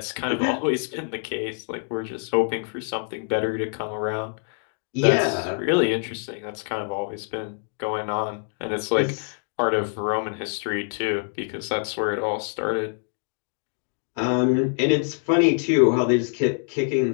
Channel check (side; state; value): right; silent; 62 dB below the other